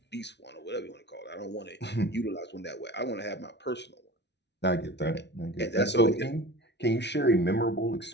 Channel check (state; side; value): late; right; 0.50 ms